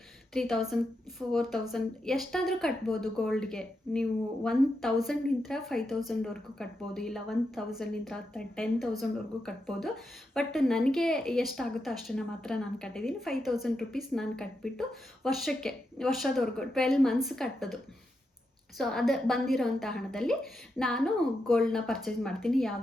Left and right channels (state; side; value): normal; both; correlation 0.85